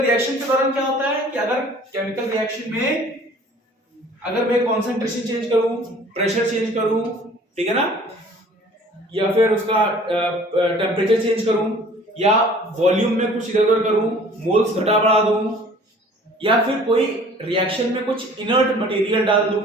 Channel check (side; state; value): both; normal; correlation 0.50